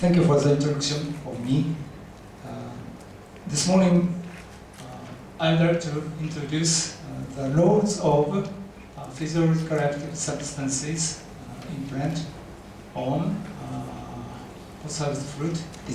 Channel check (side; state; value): both; identical; correlation 1.00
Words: you for the introduction of me. This morning, I'd like to introduce the roles of physiological active substances in plant on postharvest fruit